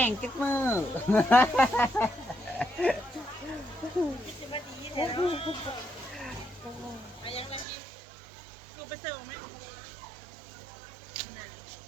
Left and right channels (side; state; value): left; drops out; at 7.7 s